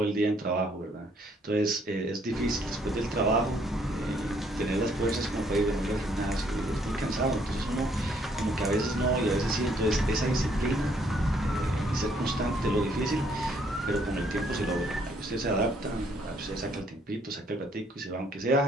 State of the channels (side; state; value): both; normal; correlation 0.67